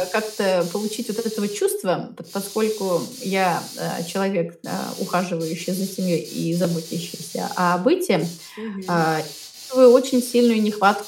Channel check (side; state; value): both; identical; correlation 1.00